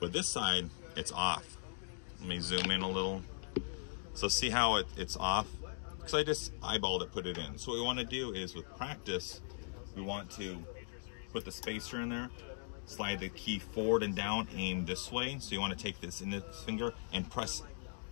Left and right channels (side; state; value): right; silent; digital silence